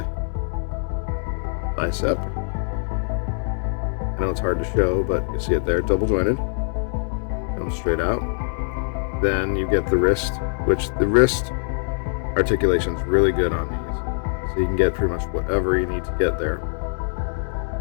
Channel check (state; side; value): silent; right; 63 dB below the other